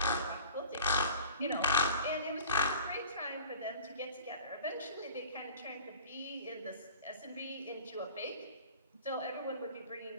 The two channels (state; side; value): inverted; both; correlation -0.44